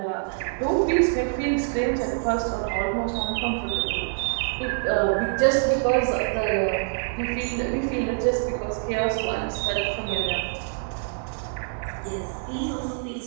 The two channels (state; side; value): silent; left; 61 dB below the other